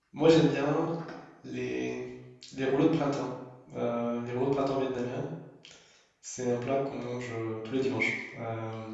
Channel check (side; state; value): both; identical; correlation 1.00